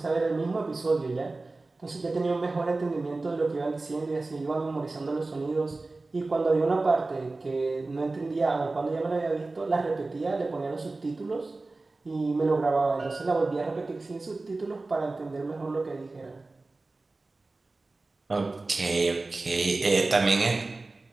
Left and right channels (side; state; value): left; quieter; 3.3 dB